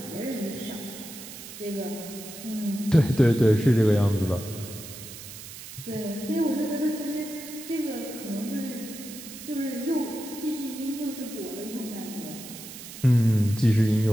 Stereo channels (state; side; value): noise; right; hiss, 13 dB below the sound